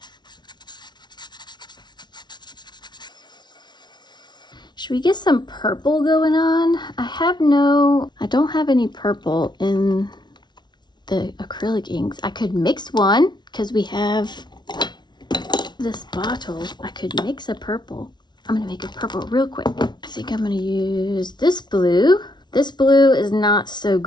Should we get some purple going on? I don't have any purple in the acrylic inks. I could mix one because we have this bottle. I could mix a purple. I'm gonna make a purple real quick. I think I'm gonna use this blue. This blue is not so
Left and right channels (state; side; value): late; right; 0.21 ms